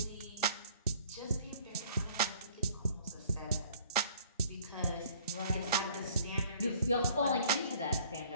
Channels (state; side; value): inverted; both; correlation -0.55